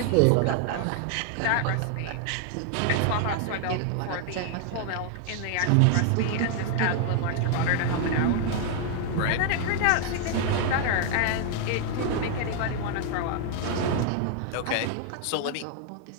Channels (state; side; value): different; both; correlation 0.00